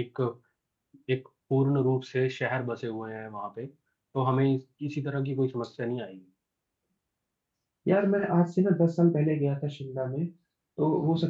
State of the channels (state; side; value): identical; both; correlation 1.00